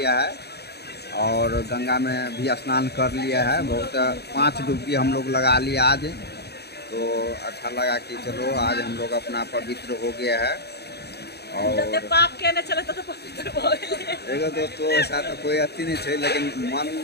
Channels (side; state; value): right; late; 0.48 ms